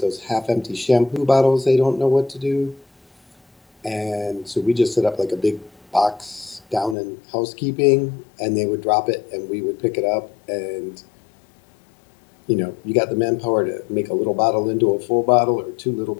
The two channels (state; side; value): drops out; right; at 7.0 s